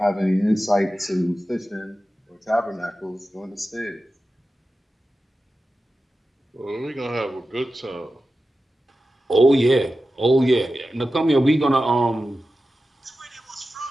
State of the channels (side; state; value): both; normal; correlation 0.93